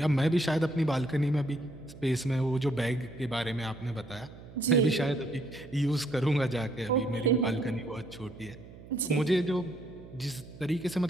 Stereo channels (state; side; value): noise; right; hum, 18 dB below the sound